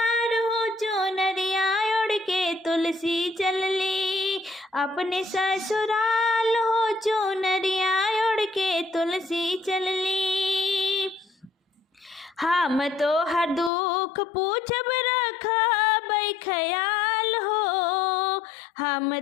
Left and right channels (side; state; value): right; drops out; at 13.7 s